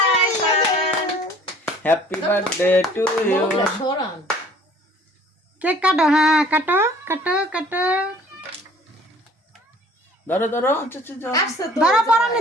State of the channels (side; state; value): both; normal; correlation 0.53